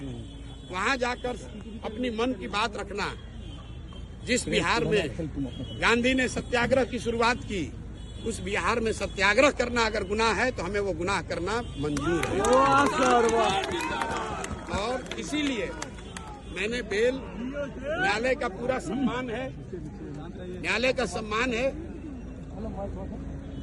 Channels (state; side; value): identical; both; correlation 1.00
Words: वहां जाकर अपनी मन की बात रखना, जिस बिहार में गांधी ने सत्याग्रह की शुरुआत की, उस बिहार में सत्याग्रह करना अगर गुनाह है तो हमें वो गुनाह करना मंजूर है। और इसीलिए मैंने बेल, न्यायालय का पूरा सम्मान है, न्यायालय का सम्मान है,